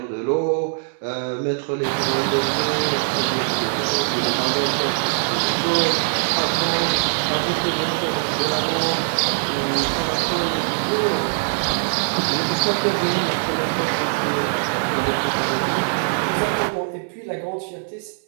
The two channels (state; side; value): silent; left; digital silence